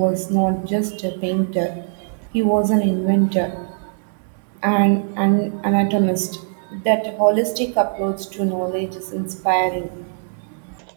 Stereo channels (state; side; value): silent; left; digital silence